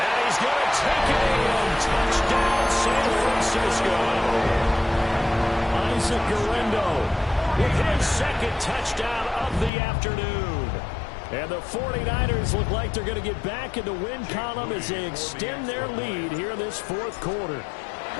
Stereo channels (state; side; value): drops out; right; at 9.7 s